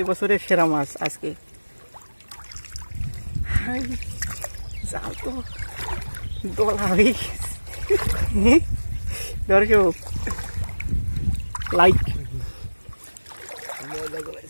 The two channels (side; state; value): both; inverted; correlation -1.00